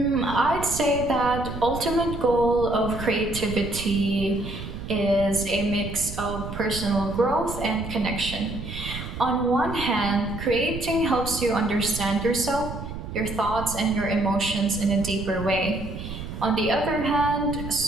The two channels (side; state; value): right; noise; rumble, 9 dB below the sound